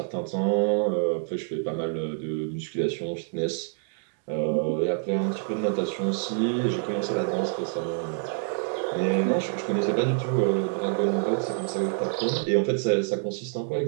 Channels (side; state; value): left; silent; 60 dB below the other